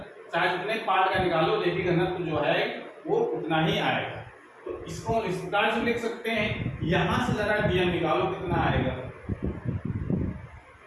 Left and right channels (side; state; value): both; identical; correlation 1.00